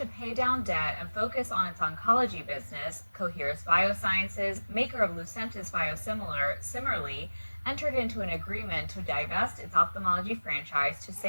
pay down debt and focus on its oncology business, Coherus Biosciences, maker of Lucentis biosimilar, similarly entered into an agreement to divest its ophthalmology franchise to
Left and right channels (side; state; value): both; inverted; correlation -1.00